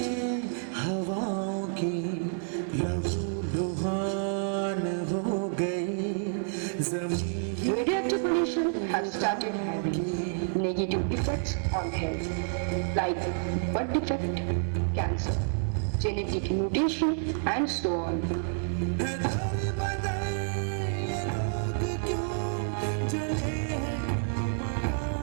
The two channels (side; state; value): left; silent; digital silence